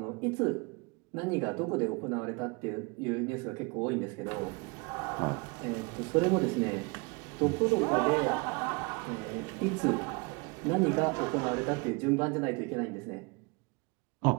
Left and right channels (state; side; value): quieter; left; 29.3 dB